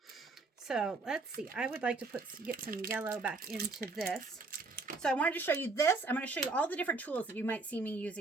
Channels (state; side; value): quieter; left; 3.7 dB